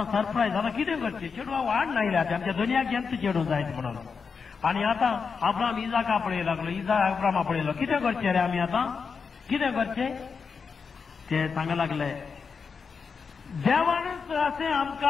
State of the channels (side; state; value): right; quieter; 5.5 dB